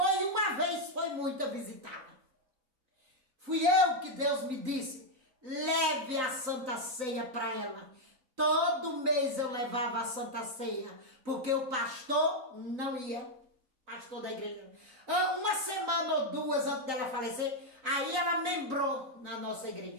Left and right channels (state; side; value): late; left; 3.9 ms